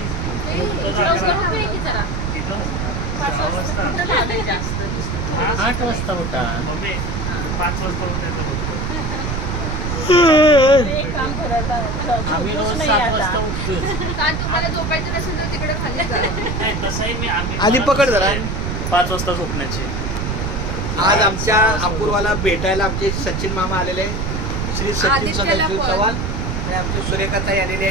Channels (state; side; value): noise; right; rumble, 2 dB below the sound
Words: 8 वाजता उठा मम्मी. 5 वाजता उठायचं बघतो आम्ही. रोज 7 वाजता उठतो. तुम्हाला झोपायचं नसेल तर तिकडे खाली जा. नाही तसंही मी आधी पकड जरा. 5 वाजता झोपण्याची. आज आमच्या अपूर्वाला भेटायला आमचे सचिन मामा आलेले, श्री सचिन सदाशिव चव्हाण आणि आमची सुरेखाताई आलेली